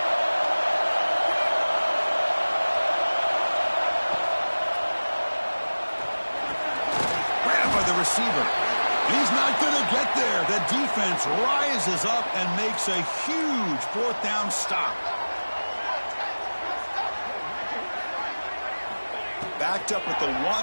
Receiver. He's not going to get there. The defense rises up and makes a huge fourth down stop. Backed up at the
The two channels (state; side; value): inverted; both; correlation -1.00